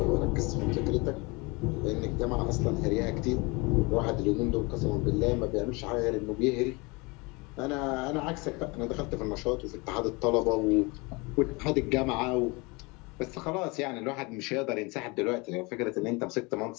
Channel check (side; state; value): right; quieter; 27.0 dB